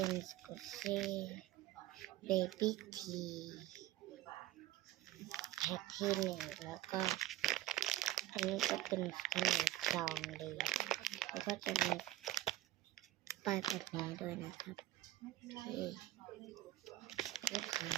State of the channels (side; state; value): left; quieter; 15.1 dB